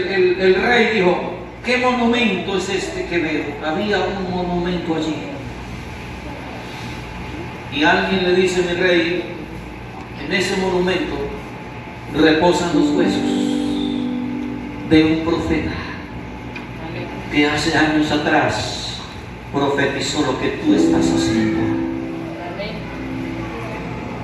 rey, dijo: ¿qué monumento es este que veo? Había un monumento allí. Y alguien le dice: mi rey, en ese monumento reposan los huesos. de un profeta que hace años atrás profetizó lo que tú estás haciendo.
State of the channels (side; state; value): both; identical; correlation 1.00